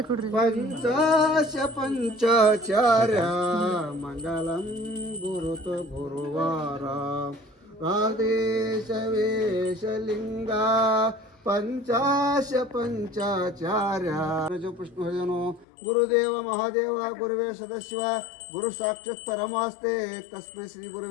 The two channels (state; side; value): drops out; right; at 15.7 s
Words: ಕೊಡ್ರಿ. ಪಂಚಾಶ ಪಂಚಾಚಾರ್ಯ ಮಂಗಲಂ ಗುರುತು ಗುರುವಾರ ಆದೇಶ ವೇಷಲಿಂಗ ಪಂಚಾಶ ಪಂಚಾಚಾರ್ಯ ಪುಷ್ಪಭಜನೋ ಗುರುದೇವ ಮಹಾದೇವ ಗುರುವೇ ಸದಶಿವ ಗುರು ಸಾಕ್ಷಾತ್ ಪರಮಾಸ್ತೆ ತಸ್ಮೈ ಶ್ರೀ